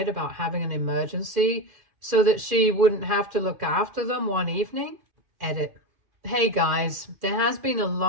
about having an emergency so that she wouldn't have to look after them one evening? Edit. Hey guys, there has been a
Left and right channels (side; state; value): left; late; 2.5 ms